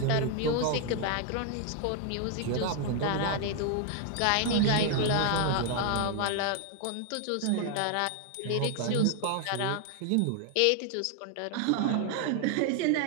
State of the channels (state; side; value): different; both; correlation 0.00